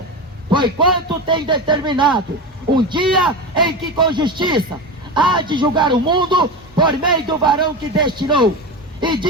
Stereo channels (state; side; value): normal; both; correlation 0.22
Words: porquanto tem determinado um dia em que com justiça há de julgar o mundo por meio do varão que destinou, e